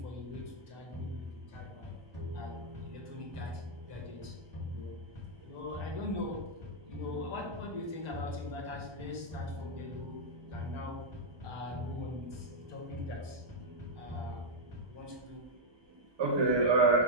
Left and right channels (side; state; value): left; late; 1.2 ms